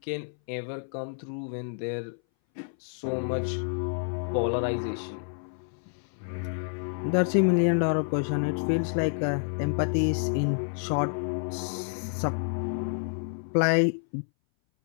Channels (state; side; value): silent; right; 59 dB below the other